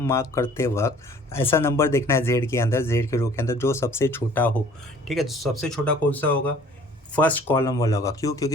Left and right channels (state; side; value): normal; both; correlation 0.53